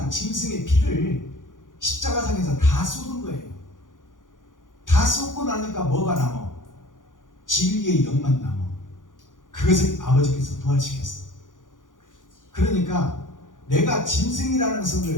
짐승의 피를 십자가상에서 다 쏟은 거예요. 다 쏟고 나니까 뭐가 남아? 진리의 영만 남아. 그것을 아버지께서 부활시켰어. 그러니까 내가 짐승이라는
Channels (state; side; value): late; right; 0.88 ms